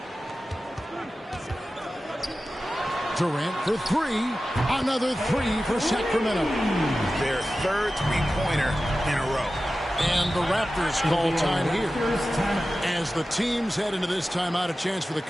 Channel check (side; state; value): both; normal; correlation 0.94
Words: Durant for 3. Another 3 for Sacramento. Their third three-pointer in a row. And the Raptors call time here. As the teams head into this timeout, a chance for the